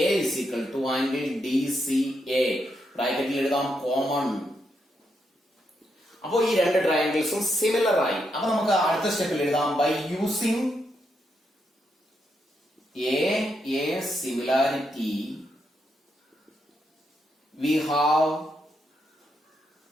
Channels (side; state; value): both; normal; correlation 0.81